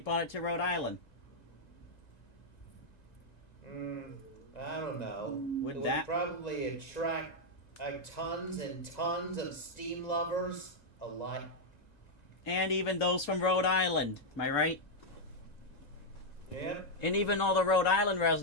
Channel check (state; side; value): late; right; 1.9 ms